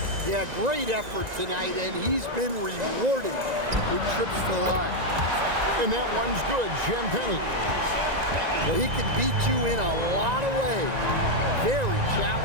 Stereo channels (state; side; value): late; left; 1.9 ms